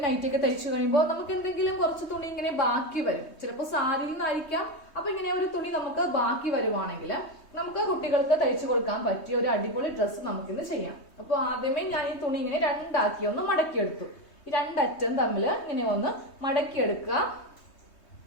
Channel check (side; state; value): right; late; 3.2 ms